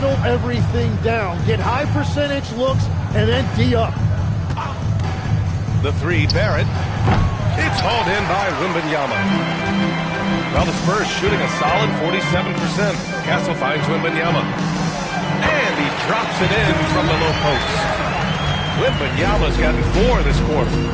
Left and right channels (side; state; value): both; identical; correlation 1.00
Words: everything down. Get high percentage looks and then D up. The three, Barrett. It's hauled in by Wembanyama. Well, the Spurs shooting a solid 47%. Castle finds Wembanyama. And he drops it in from the low post. Wembanyama's gotten 4 this quarter.